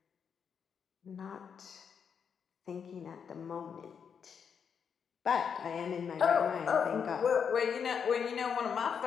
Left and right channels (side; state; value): right; quieter; 6.9 dB